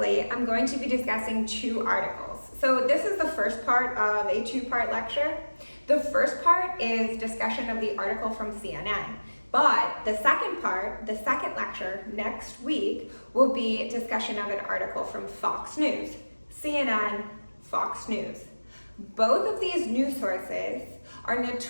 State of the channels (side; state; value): both; inverted; correlation -1.00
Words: I'm going to be discussing two articles. So this is the first part of a two-part lecture. The first part is discussion of the article from CNN, but the second part, the second lecture next week, will be discussion of an article from Fox News. CNN, Fox News. Both of these news sources are